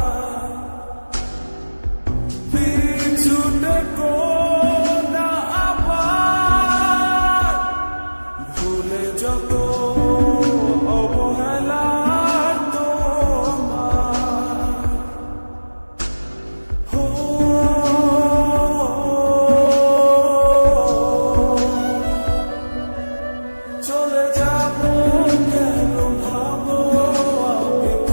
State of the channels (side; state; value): both; inverted; correlation -1.00